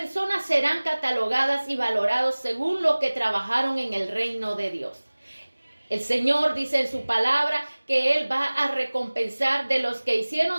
serán catalogadas y valoradas según lo que trabajaron en el reino de Dios. El Señor dice en su palabra que Él va a recompensar de los que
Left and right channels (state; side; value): inverted; both; correlation -1.00